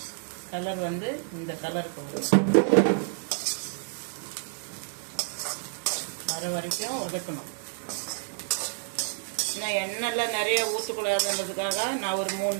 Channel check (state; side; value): silent; left; 59 dB below the other